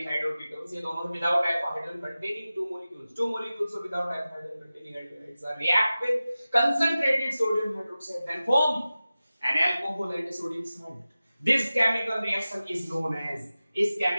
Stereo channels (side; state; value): both; inverted; correlation -0.95